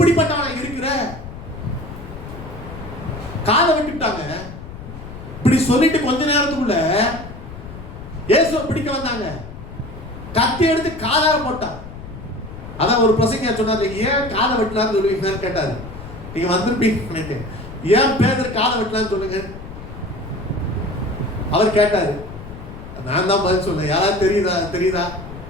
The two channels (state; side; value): noise; left; rumble, 13 dB below the sound